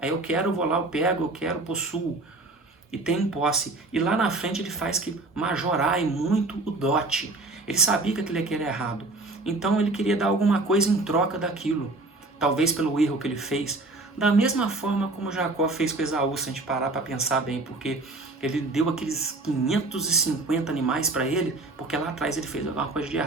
eu quero, eu vou lá, eu pego, eu quero, possuo. E tem posse. E lá na frente ele faz que majorar muito o dote. Ele sabia que aquilo era errado. Então ele queria dar alguma coisa em troca daquilo. Talvez pelo erro que ele fez. Da mesma forma como Jacó fez com Esaú, se a gente parar para pensar bem. Porque ele deu aqueles 550 animais para ele, porque lá atrás ele fez alguma coisa de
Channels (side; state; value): left; quieter; 3.1 dB